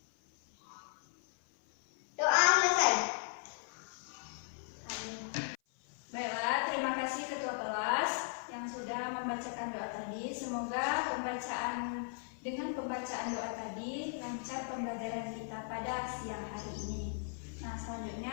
Doa selesai. Baiklah, terima kasih ketua kelas yang sudah membacakan doa tadi. Semoga dengan pembacaan doa tadi lancar pembelajaran kita pada siang hari ini. Nah,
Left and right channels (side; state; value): right; silent; 53 dB below the other